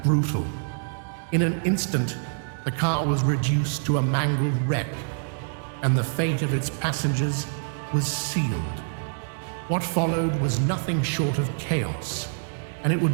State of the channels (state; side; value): silent; left; digital silence